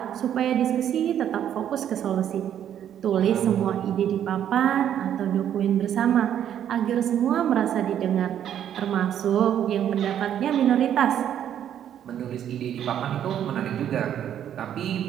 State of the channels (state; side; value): quieter; left; 10.0 dB